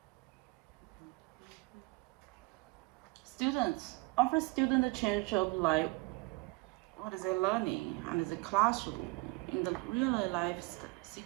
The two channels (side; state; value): left; quieter; 25.3 dB